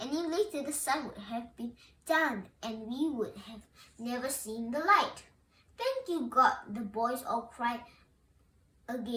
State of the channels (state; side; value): identical; both; correlation 1.00